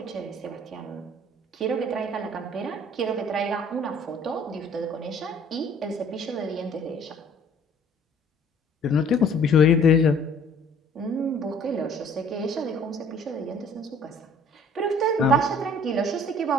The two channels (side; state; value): both; normal; correlation 0.54